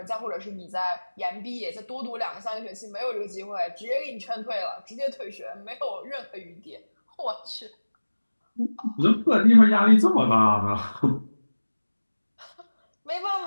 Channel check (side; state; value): both; inverted; correlation -1.00